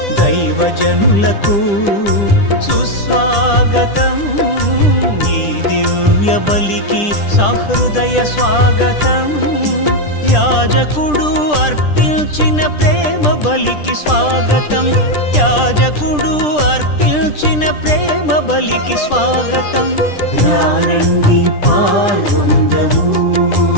దైవజనులకు సుస్వాగతం ఈ దివ్య బలికి సహృదయ స్వాగతం యాజకుడు అర్పించిన ప్రేమ బలికి స్వాగతం యాజకుడు అర్పించిన ప్రేమ బలికి స్వాగతం రారండి పాల్గొందము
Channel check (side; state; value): right; late; 10 ms